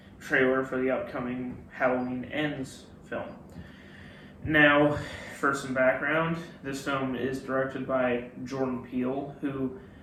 trailer for the upcoming Halloween Ends film. Now, for some background, this film is directed by Jordan Peele, who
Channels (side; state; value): both; identical; correlation 1.00